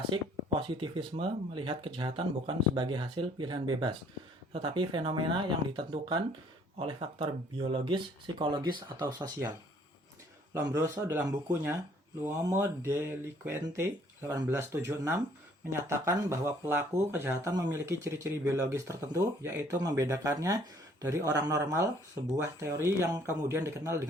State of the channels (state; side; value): normal; both; correlation 0.60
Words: positivisme melihat kejahatan bukan sebagai hasil pilihan bebas, tetapi fenomena yang ditentukan oleh faktor biologis, psikologis, atau sosial. Lombroso dalam bukunya L'uomo delinquente 1876 menyatakan bahwa pelaku kejahatan memiliki ciri-ciri biologis tertentu, yaitu membedakannya dari orang normal, sebuah teori yang kemudian dikenal